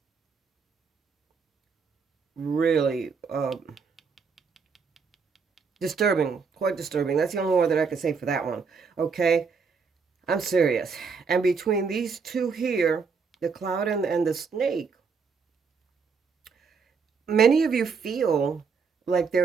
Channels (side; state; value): left; quieter; 5.3 dB